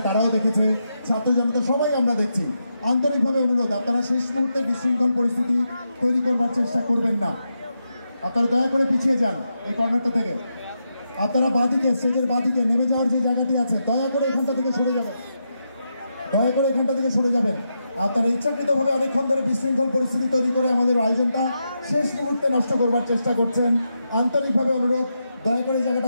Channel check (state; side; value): inverted; both; correlation -0.85